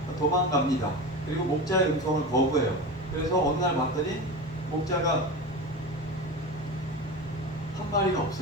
도망갑니다. 그리고 목자의 음성을 거부해요. 그래서 어느 날 봤더니 목자가 한 마리가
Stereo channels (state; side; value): normal; both; correlation 0.26